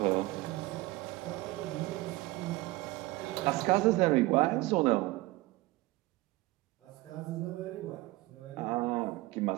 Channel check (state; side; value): quieter; left; 20.0 dB